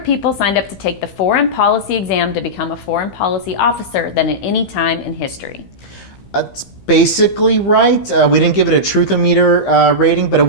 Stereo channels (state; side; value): late; right; 15 ms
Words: signed up to take the foreign policy exam to become a foreign policy officer than at any time in history. That's basically right. We didn't give it a Truthometer rating, but it